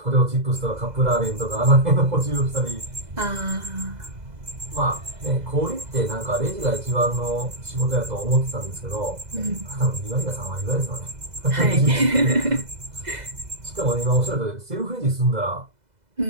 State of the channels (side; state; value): left; late; 2.0 ms